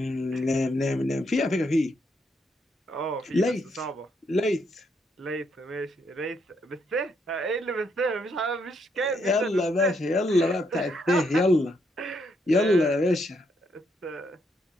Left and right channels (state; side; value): normal; both; correlation 0.75